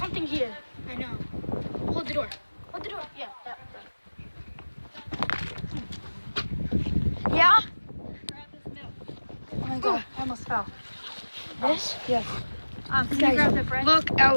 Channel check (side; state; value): both; inverted; correlation -1.00